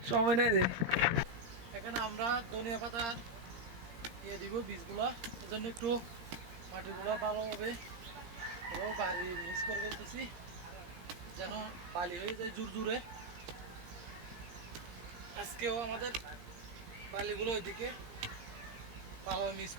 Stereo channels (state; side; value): late; left; 17 ms